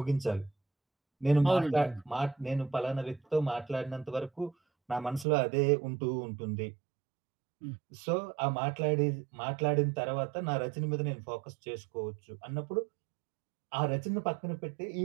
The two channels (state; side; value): drops out; left; at 5.2 s